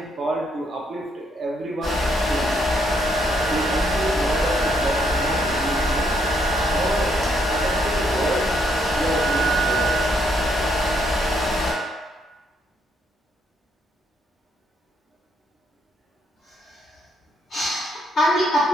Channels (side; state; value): both; normal; correlation 0.73